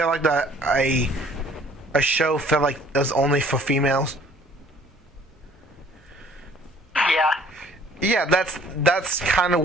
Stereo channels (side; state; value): both; normal; correlation 0.56